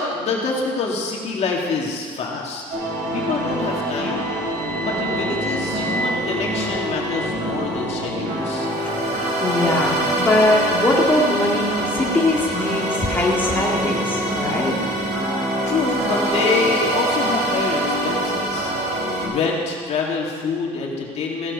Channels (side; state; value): both; normal; correlation 0.47